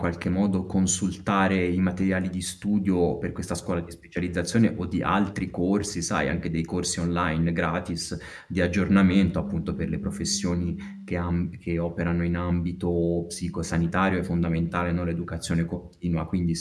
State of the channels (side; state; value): both; identical; correlation 1.00